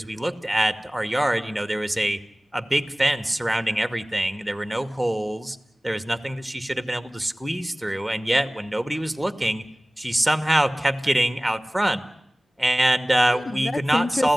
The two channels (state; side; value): normal; both; correlation 0.98